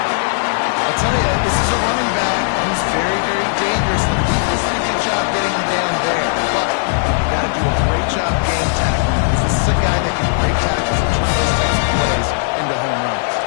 tell you, this is a running back who's very, very dangerous. The defense did a good job getting him down there. But you got to do a great job game tackling. This is a guy that can break tackles and turn those types of plays into home runs.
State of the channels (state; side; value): silent; right; digital silence